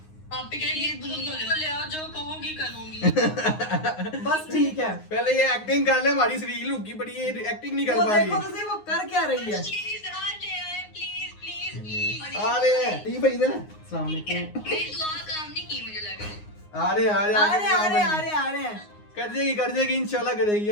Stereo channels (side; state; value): right; late; 9.6 ms